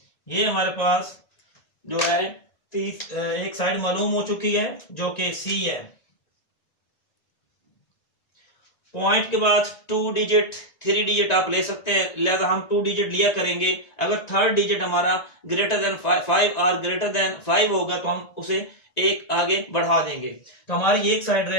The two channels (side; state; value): right; late; 1.9 ms